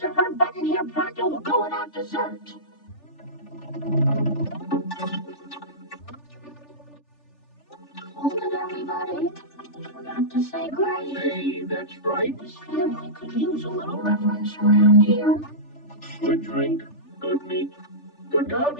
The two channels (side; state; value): right; late; 3.4 ms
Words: or her button here pronto will go without dessert. Hold it, everybody. Forgot to say grace. Hey, that's right. This family could use a little reverence around here. Good drink, good meat. Good God,